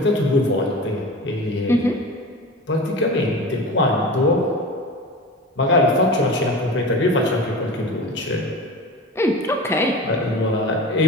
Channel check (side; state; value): both; normal; correlation 0.32